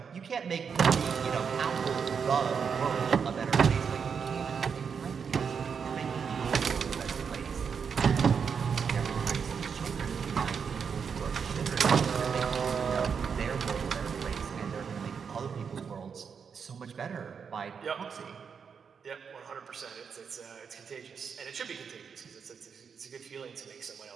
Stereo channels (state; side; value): quieter; left; 6.4 dB